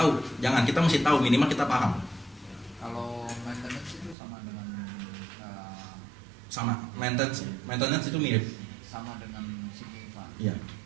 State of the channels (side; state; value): left; drops out; at 4.2 s